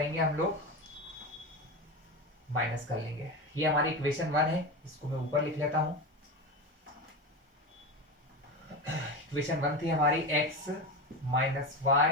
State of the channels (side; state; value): both; normal; correlation 0.22